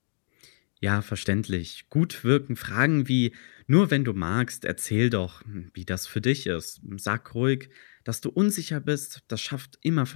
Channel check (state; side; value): silent; right; digital silence